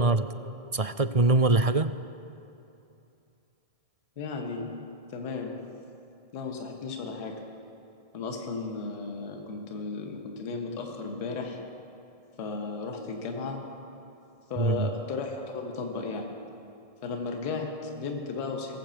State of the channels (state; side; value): late; left; 1.6 ms